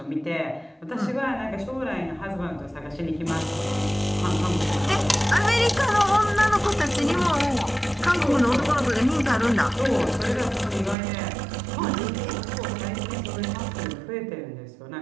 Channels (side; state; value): left; drops out; at 11.0 s